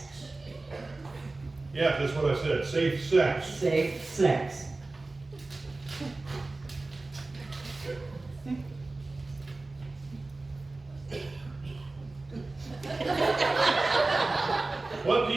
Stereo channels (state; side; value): quieter; left; 3.2 dB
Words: Yeah, that's what I said. Safe sex. Safe sex. What do